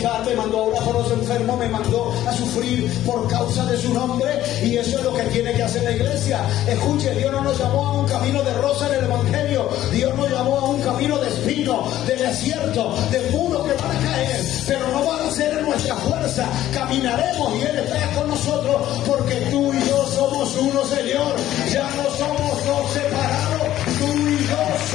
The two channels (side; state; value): right; quieter; 13.3 dB